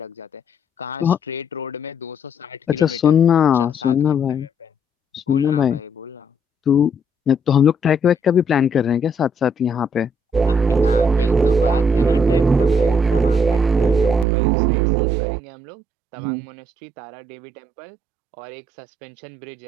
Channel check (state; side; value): drops out; left; at 14.2 s